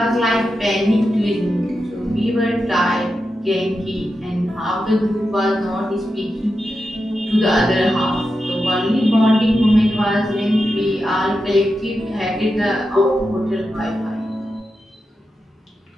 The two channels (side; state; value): both; normal; correlation 0.89